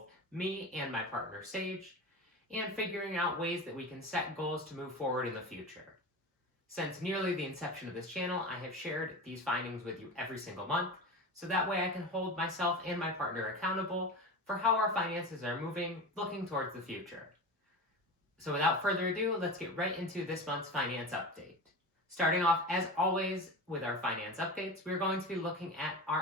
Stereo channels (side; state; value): both; normal; correlation 0.28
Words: me and my partner Sage, and figuring out ways that we can set goals to move forward in the future. Since nearly the inception of this channel, I have shared these findings with you every single month, so that way I can hold myself and my partner accountable for how our finances are moving, looking towards the future. So without further ado, let's get right into this month's finance update. Starting off, as always, with our finance updates, we're going to be looking at